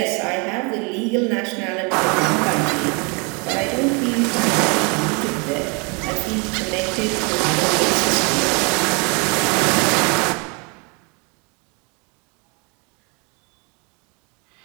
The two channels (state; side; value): quieter; left; 32.0 dB